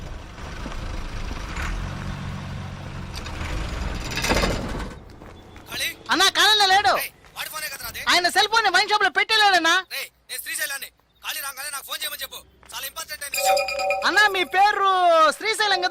అన్నా కాలంలో లేడు. ఆయన సెల్ ఫోన్ వైన్ షాప్ లో పెట్టలేడన్నా. అన్నా మీ పేరు శ్రీశైలం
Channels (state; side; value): identical; both; correlation 1.00